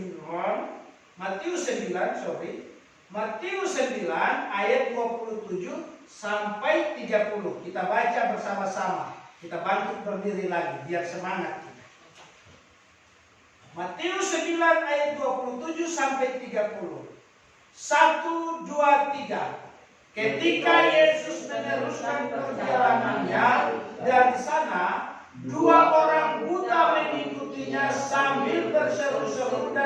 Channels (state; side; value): identical; both; correlation 1.00